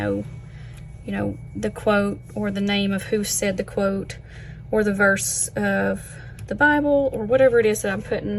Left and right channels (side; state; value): both; identical; correlation 1.00